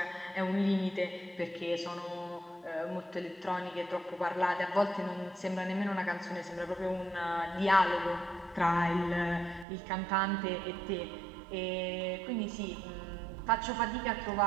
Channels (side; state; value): left; drops out; at 9.7 s